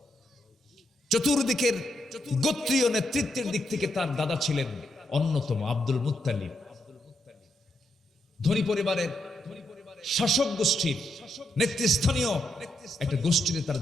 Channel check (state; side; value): normal; both; correlation 0.80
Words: চতুর্দিকের গোত্রীয় নেতৃত্বের দিক থেকে তার দাদা ছিলেন অন্যতম আব্দুল মুত্তালিব। ধনী পরিবারের শাসক গোষ্ঠীর নেতৃস্থানীয় একটা গোষ্ঠীতে তার